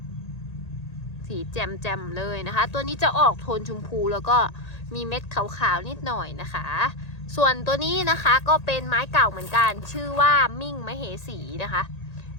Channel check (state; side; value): late; right; 1.8 ms